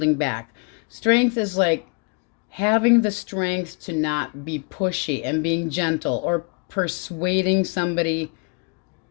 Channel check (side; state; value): right; quieter; 35.6 dB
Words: back. Strength is like having the strength to not be pushy and being gentle, or persuading somebody